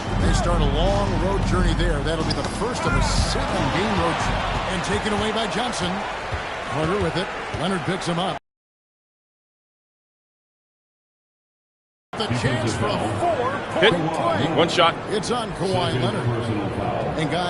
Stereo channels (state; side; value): identical; both; correlation 1.00